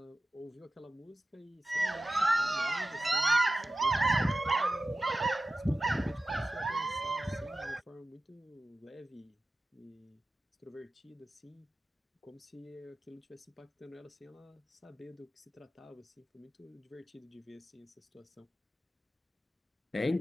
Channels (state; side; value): normal; both; correlation 0.94